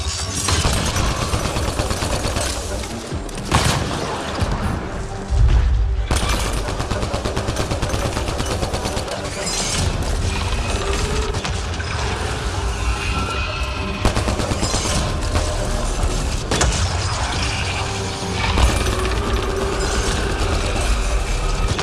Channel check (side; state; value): both; identical; correlation 1.00